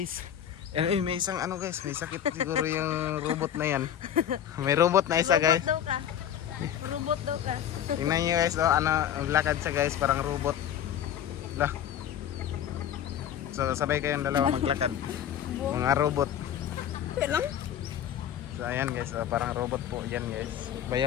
Ay, may isang ano guys, may sakit siguro yung robot na yan. May robot na isa guys. Robot daw ka. Tingnan nyo guys, oh, ano, lakad siya guys, parang robot. Lah. So, sabay kayong dalawa maglakad. Mga robot. Lang? So, ayan guys, oh, parang robot po yan guys.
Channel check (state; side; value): quieter; right; 9.9 dB